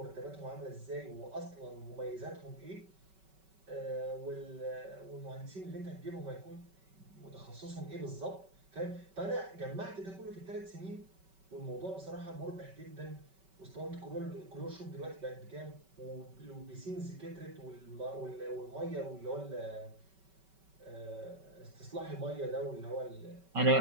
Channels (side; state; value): left; late; 5.3 ms